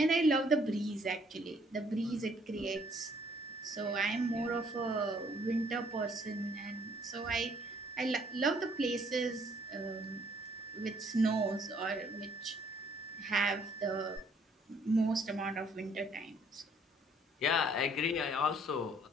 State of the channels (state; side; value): normal; both; correlation 0.64